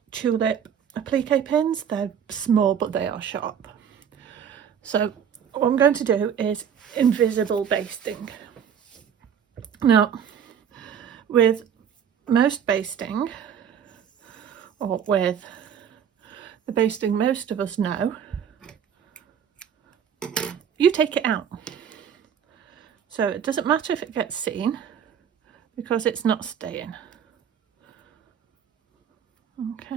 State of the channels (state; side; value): quieter; left; 8.1 dB